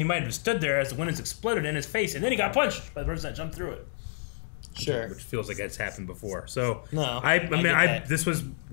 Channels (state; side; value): silent; right; digital silence